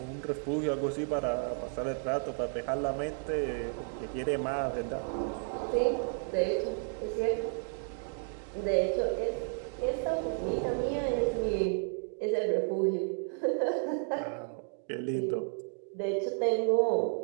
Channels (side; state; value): left; silent; 56 dB below the other